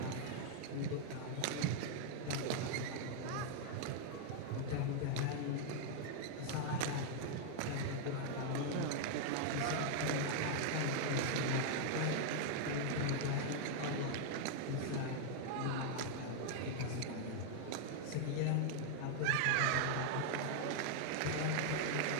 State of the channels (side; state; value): both; different; correlation 0.00